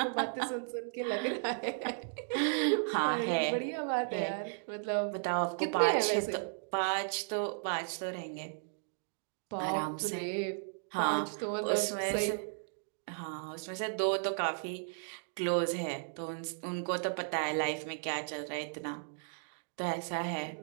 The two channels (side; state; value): left; silent; digital silence